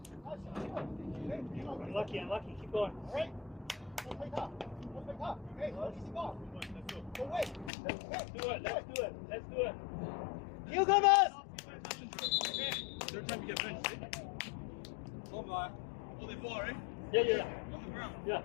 Unlucky. Keep going. Let's do it. Newcomers! Third time you get benched, eh? Oh, they ball, right? Yeah. On the ground. Yeah.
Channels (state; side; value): drops out; right; at 7.7 s